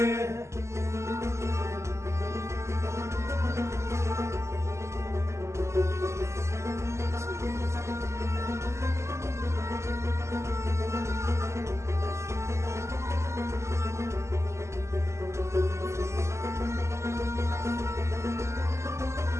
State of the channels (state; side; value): late; left; 0.13 ms